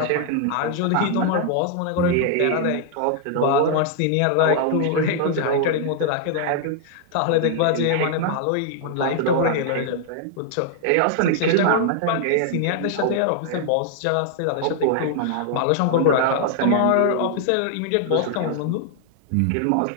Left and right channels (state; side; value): different; both; correlation 0.00